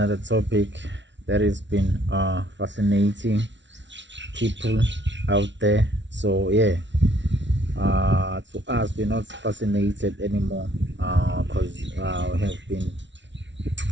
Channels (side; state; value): left; late; 0.53 ms